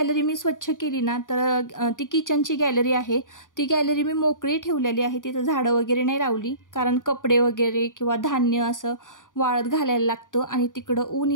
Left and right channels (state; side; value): late; right; 0.88 ms